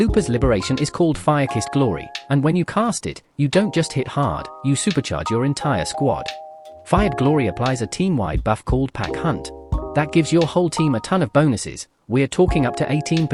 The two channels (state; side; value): identical; both; correlation 1.00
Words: Liberation is called Fire-Kissed Glory, and when you cast it, you don't just hit hard, you supercharge your entire squad. Fired Glory applies a team-wide buff called Pack Hunt. That gives your whole team a ton of bonuses. We're talking up to